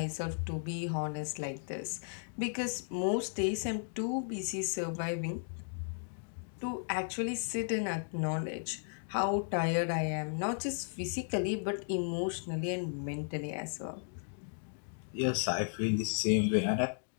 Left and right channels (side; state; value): right; silent; digital silence